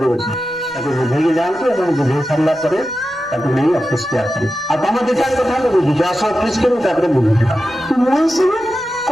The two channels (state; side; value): noise; left; rumble, 29 dB below the sound